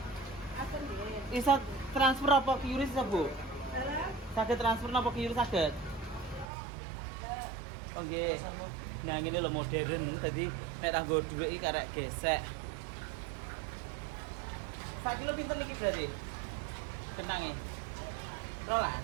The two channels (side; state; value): left; drops out; at 6.5 s